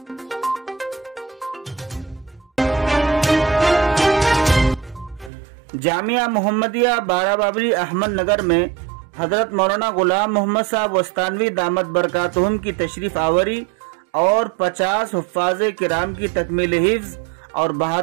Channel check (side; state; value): left; drops out; at 5.3 s